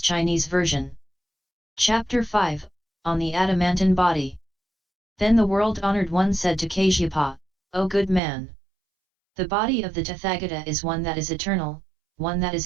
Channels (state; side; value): drops out; left; at 8.2 s